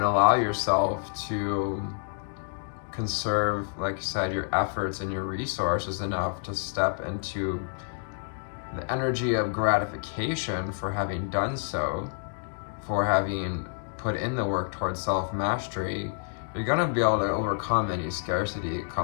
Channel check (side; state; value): right; silent; digital silence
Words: allow yourself to conserve, like I said, your efforts and your resources enough to step into the energy of gratification for having done so, for having put in the work towards self-mastery, you're going to be able to overcome any scarcity that